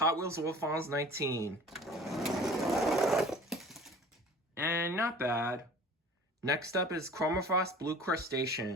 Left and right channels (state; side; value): normal; both; correlation 0.45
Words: Wheels Wolfons 19. And not bad. Next up is Chromafrost Blue